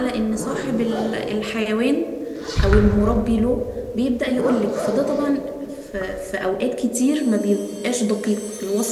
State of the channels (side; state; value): both; identical; correlation 1.00